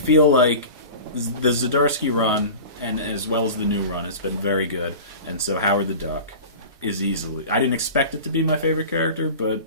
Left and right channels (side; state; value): both; inverted; correlation -0.35